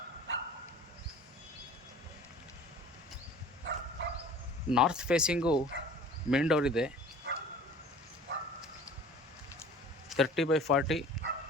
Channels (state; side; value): normal; both; correlation 0.46